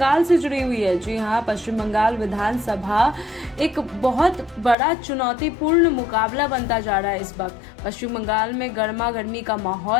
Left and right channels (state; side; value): drops out; right; at 4.8 s